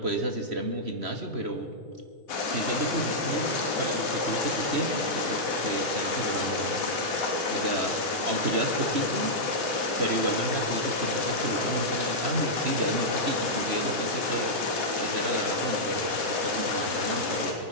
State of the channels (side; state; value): left; late; 3.1 ms